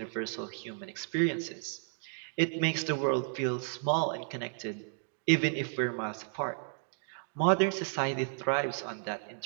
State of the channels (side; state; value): left; silent; 56 dB below the other